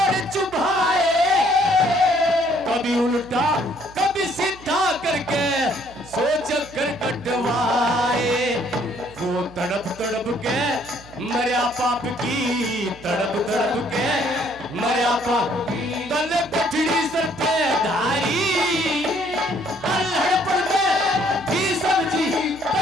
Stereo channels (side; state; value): right; noise; hum, 21 dB below the sound